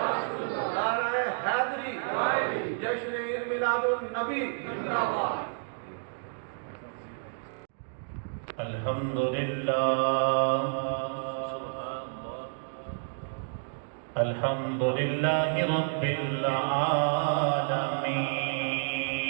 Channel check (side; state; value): left; silent; digital silence